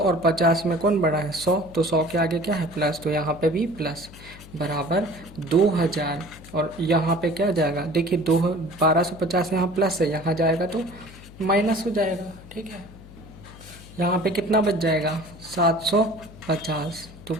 50 में कौन बड़ा है 100, तो 100 के आगे क्या है प्लस, तो यहाँ पे भी प्लस बराबर 2000। और यहाँ पे क्या जाएगा देखिए 1250 यहाँ प्लस है, यहाँ जाएगा तो माइनस हो जाएगा। ठीक है, यहाँ पे कितना बच जाएगा 750, तो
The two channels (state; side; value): noise; left; hum, 18 dB below the sound